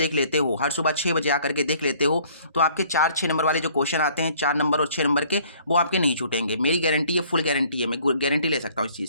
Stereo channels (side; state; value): both; inverted; correlation -0.58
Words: लेते हो, हर सुबह 6 बजे आकर के देख लेते हो, तो आपके 4-6 नंबर वाले जो क्वेश्चन आते हैं, 4 नंबर और 6 नंबर के, वो आपके नहीं छूटेंगे। मेरी गारंटी है, फुल गारंटी है, मैं गारंटी ले सकता हूँ इस